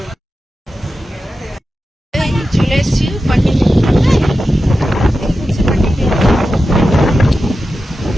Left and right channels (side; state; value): both; normal; correlation 0.92